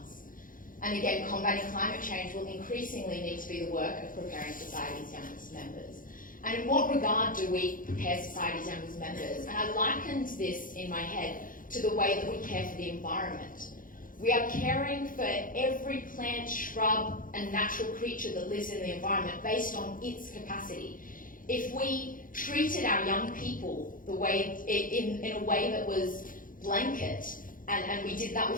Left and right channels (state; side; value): late; right; 0.40 ms